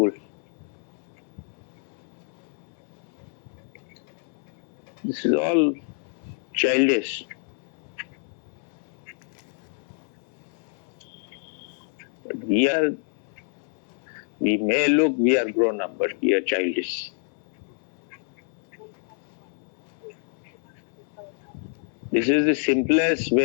This is all childish. But we may look we are grown up, but we are childish. This is the simplest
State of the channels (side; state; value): right; silent; 60 dB below the other